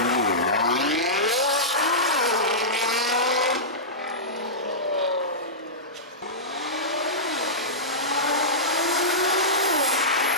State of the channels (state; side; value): normal; both; correlation -0.16